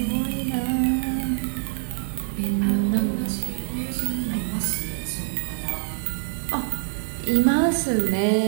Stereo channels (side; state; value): left; silent; digital silence